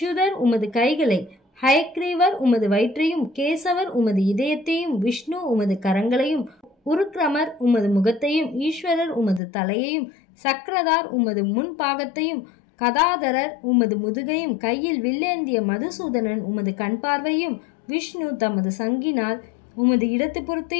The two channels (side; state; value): right; drops out; at 9.4 s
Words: உமது கைகளை, ஹயக்ரீவர் உமது வயிற்றையும், கேசவர் உமது இதயத்தையும், விஷ்ணு உமது கரங்களையும், உருக்ரமர் உமது முகத்தையும், ஈஸ்வரர் உமது தலையையும், சக்கரதார் உமது முன்பாகத்தையும், கதாதரர் உமது முதுகையும், கையில் வில்லேந்திய மதுசூதனன் உமது கண் பார்வையும், விஷ்ணு தமது சங்கினால் உமது இடத்து